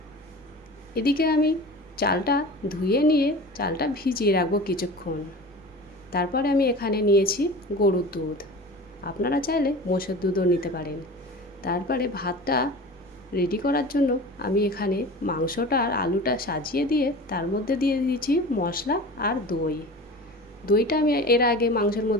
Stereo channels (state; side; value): noise; right; rumble, 28 dB below the sound